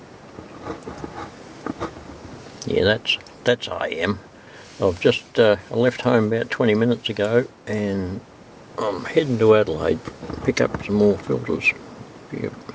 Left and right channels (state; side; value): identical; both; correlation 1.00